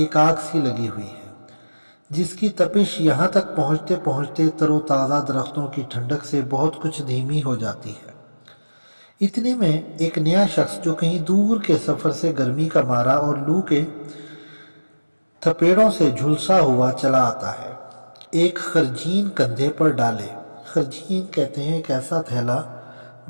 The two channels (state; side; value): inverted; both; correlation -1.00